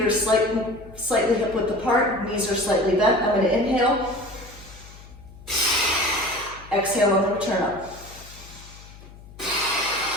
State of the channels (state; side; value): noise; left; hum, 19 dB below the sound